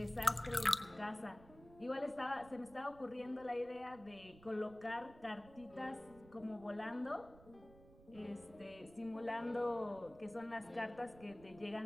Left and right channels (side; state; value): right; noise; rumble, 21 dB below the sound